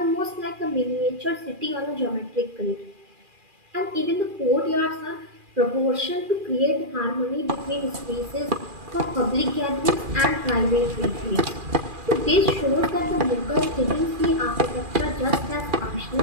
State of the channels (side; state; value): left; late; 2.4 ms